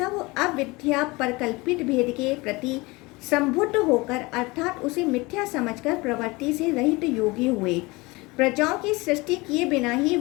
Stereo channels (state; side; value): quieter; right; 23.7 dB